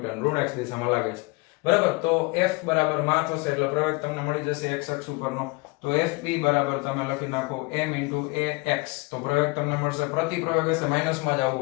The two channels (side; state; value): right; quieter; 26.9 dB